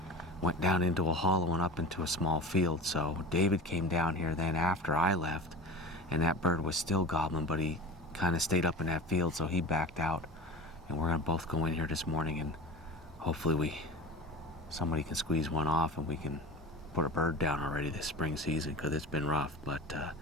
went down into a hollow and up into a small field. So David came down here then after I left, and that bird was still gobbling, but he kind of stayed up in that field, so he backed out. And we're gonna both go in here this morning, and hopefully somebody can squeeze one off and we can put a bird down already this spring season, because it's been rough. But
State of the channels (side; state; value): both; normal; correlation 0.32